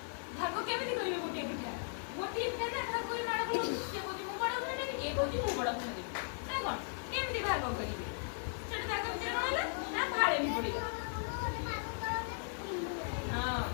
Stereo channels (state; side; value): silent; right; digital silence